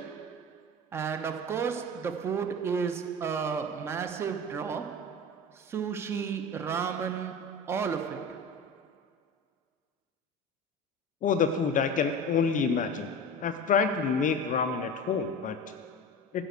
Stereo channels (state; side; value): normal; both; correlation 0.31